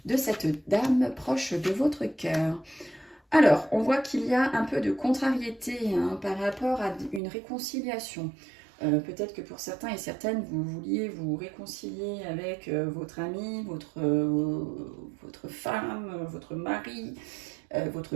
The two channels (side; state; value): left; drops out; at 7.2 s